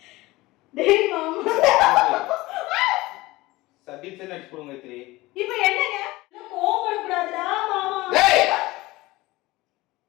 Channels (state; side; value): quieter; right; 19.9 dB